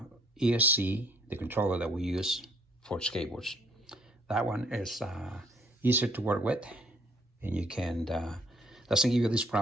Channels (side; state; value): both; normal; correlation 0.63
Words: ESC, the controller that we use for skateboards. That one is easier to work with, and you can, the doesn't give you these